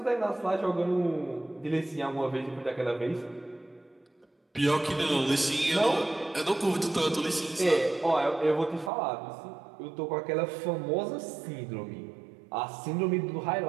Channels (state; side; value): drops out; left; at 8.9 s